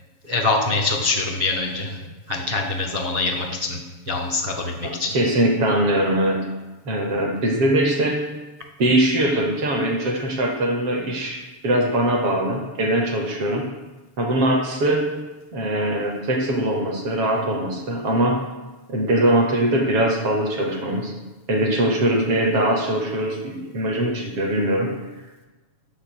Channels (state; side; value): late; left; 7.2 ms